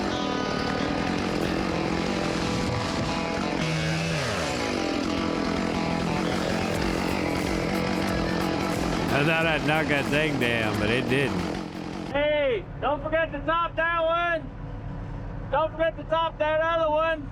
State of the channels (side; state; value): both; identical; correlation 1.00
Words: I thought I'd knock that thing down, but it didn't. Hey, don't forget to top that one. Don't forget to top that other one.